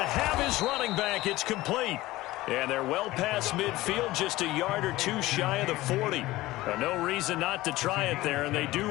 have his running back. It's complete. And they're well past midfield, just a yard or two shy of the 40. No reason not to try it there, and they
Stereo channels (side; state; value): right; quieter; 17.9 dB